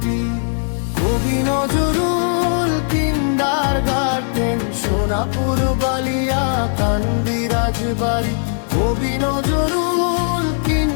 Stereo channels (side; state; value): right; silent; digital silence